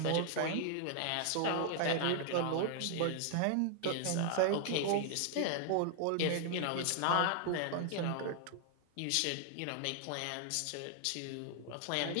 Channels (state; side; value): different; both; correlation 0.00